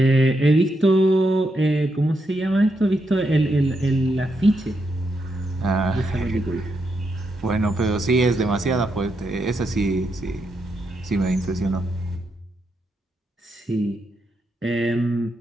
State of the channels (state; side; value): normal; both; correlation 0.82